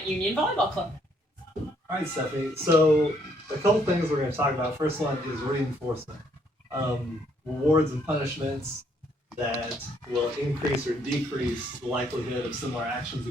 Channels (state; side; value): normal; both; correlation 0.69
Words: Union Volleyball Club. All right, Stephanie. So a couple things we're going to talk about. First one is reinforcement, rewards and punishments that will increase or decrease the likelihood of similar actions